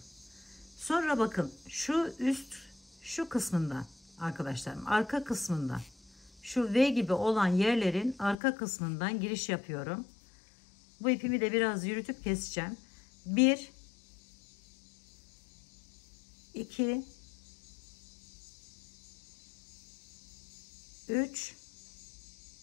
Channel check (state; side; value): drops out; right; at 8.3 s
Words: Sonra bakın şu kısmından arkadaşlarım, arka kısmından, şu V gibi olan yerlerin arka kısmından giriş yapıyorum. Bu ipimi de biraz yürütüp keseceğim. 1 2 3